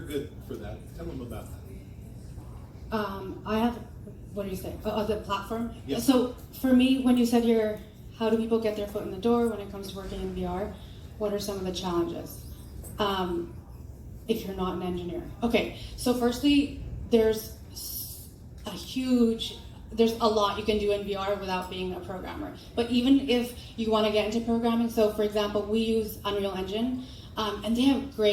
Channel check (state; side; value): identical; both; correlation 1.00